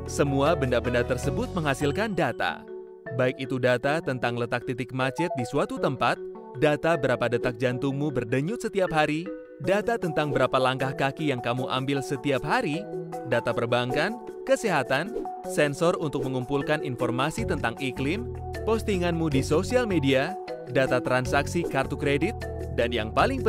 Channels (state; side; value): identical; both; correlation 1.00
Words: Semua benda-benda tersebut menghasilkan data. Baik itu data tentang letak titik macet di suatu tempat, data berapa detak jantungmu berdenyut setiap hari, data tentang berapa langkah kaki yang kamu ambil setiap hari, data perbankan, kesehatan, sensor untuk mengumpulkan informasi tentang iklim, postinganmu di sosial media, data transaksi kartu kredit, dan yang paling